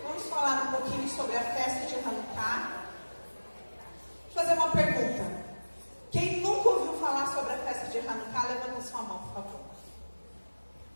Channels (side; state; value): both; inverted; correlation -1.00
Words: Vamos falar um pouquinho sobre a festa de Hanukkah. Vou fazer uma pergunta. Quem nunca ouviu falar sobre a festa de Hanukkah, levanta sua mão, por favor.